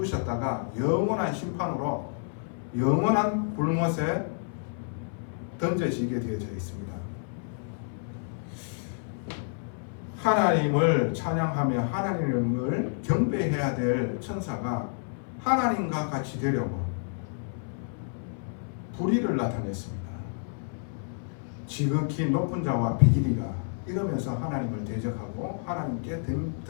영원한 심판으로 영원한 불못에 던져지게 되어져 있습니다. 하나님을 찬양하며 하나님을 경배해야 될 천사가 하나님과 같이 되려고 불의를 나타냈습니다. 지극히 높은 자와 비길이가 이러면서 하나님을 대적하고 하나님께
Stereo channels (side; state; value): right; silent; 58 dB below the other